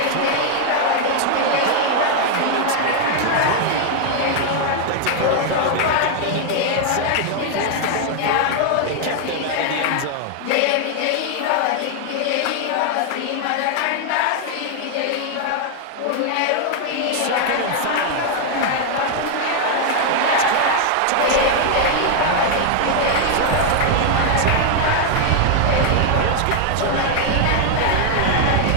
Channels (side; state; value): both; different; correlation 0.00